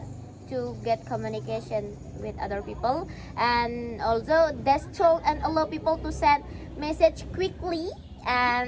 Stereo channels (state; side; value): identical; both; correlation 1.00